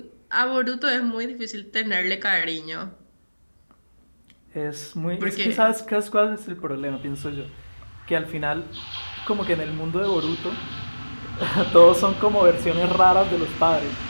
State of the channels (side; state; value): both; inverted; correlation -1.00